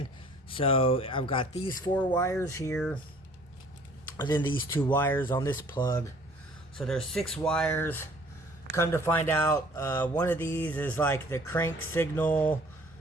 So I've got these 4 wires here. And then these 2 wires on this plug. So there's 6 wires. Come to find out, one of these is like the crank signal.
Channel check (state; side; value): normal; both; correlation 0.55